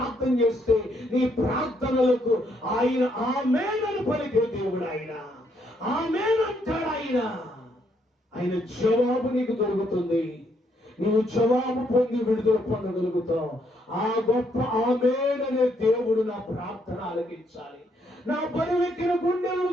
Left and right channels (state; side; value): normal; both; correlation 0.72